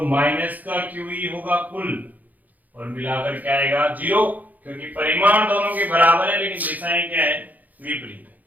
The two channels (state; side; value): late; left; 0.081 ms